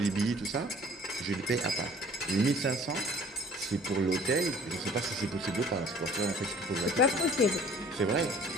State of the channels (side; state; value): both; normal; correlation 0.51